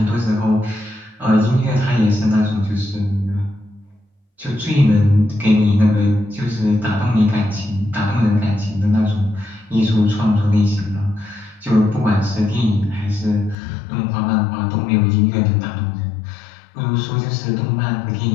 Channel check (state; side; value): drops out; right; at 13.6 s